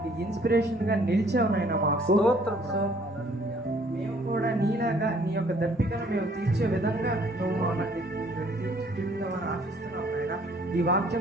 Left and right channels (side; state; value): both; normal; correlation 0.60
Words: ఇన్స్పిరేషన్గా నిలిచావు నాయన మాకు. సో మేము కూడా నీలాగా నీ యొక్క దర్పికను మేము తీర్చే విధంగా నువ్వు మమ్మల్ని తీర్చిదిద్దామని ఆశిస్తున్నావు నాయన. ఈ